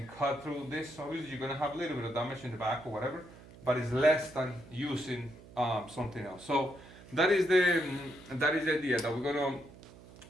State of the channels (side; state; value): right; noise; hum, 20 dB below the sound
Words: cut through this. Obviously, you're going to have a little bit of damage in the back or whatever, but it's less than using something else. So that is the idea that we're going